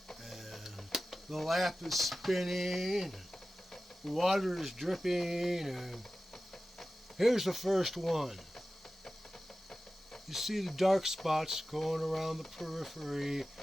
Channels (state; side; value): normal; both; correlation 0.95